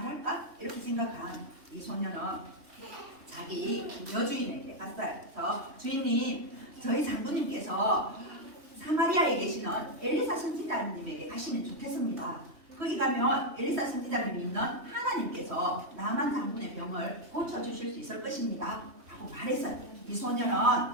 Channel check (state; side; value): late; left; 3.1 ms